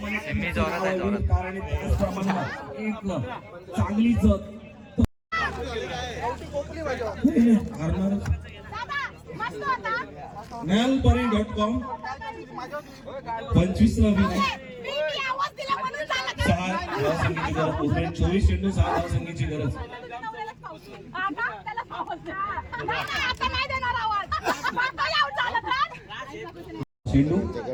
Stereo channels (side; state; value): both; identical; correlation 1.00